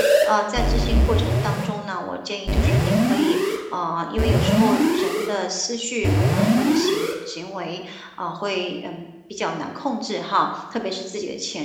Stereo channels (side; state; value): both; identical; correlation 1.00